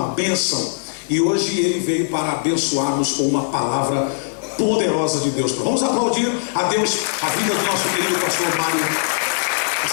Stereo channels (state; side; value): silent; right; digital silence